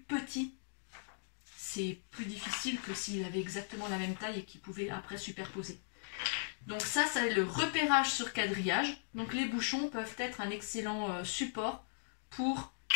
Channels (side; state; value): right; silent; digital silence